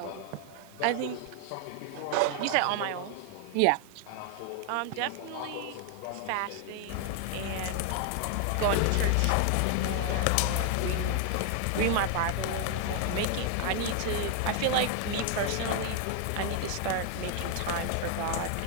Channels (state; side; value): different; both; correlation 0.00